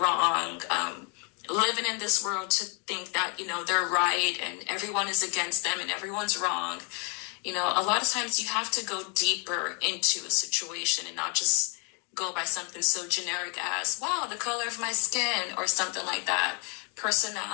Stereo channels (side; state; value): right; quieter; 34.5 dB